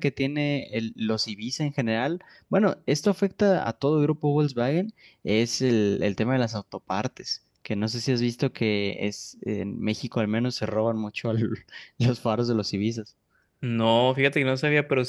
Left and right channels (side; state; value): both; identical; correlation 1.00